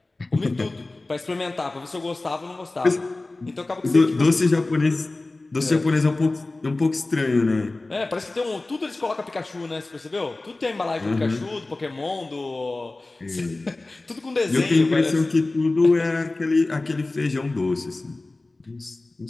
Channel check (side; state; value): right; quieter; 3.1 dB